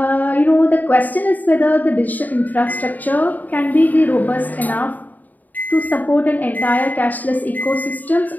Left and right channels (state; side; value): late; right; 0.082 ms